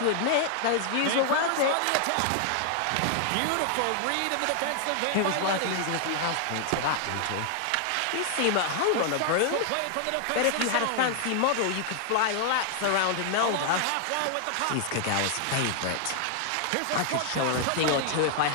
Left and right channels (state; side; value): different; both; correlation 0.00